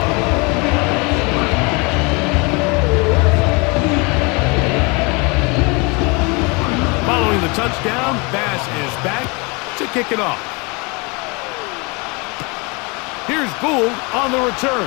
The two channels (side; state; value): right; quieter; 29.2 dB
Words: Following the touchdown, Bass is back to kick it off. Here's Gould on the